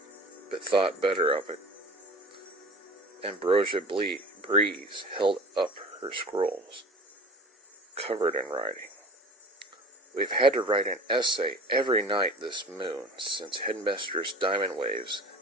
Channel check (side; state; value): both; normal; correlation 0.40